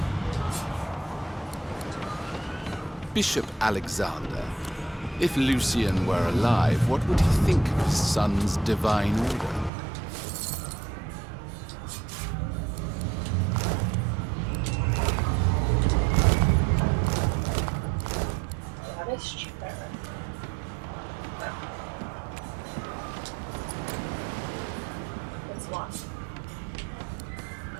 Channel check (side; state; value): left; drops out; at 9.7 s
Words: Bishop Alexander. If Lucian were alive, what would he think of his son's divine order? Goddess cheaper. It's lost.